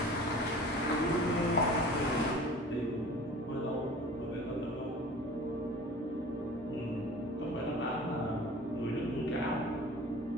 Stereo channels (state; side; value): normal; both; correlation 0.42